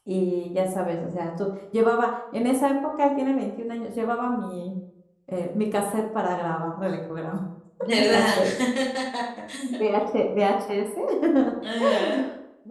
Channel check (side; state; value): both; identical; correlation 1.00